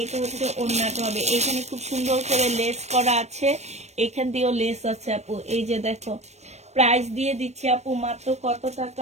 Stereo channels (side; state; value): left; late; 0.32 ms